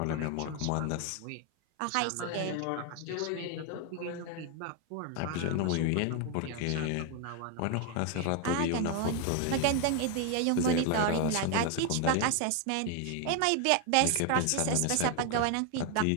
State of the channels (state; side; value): different; both; correlation 0.01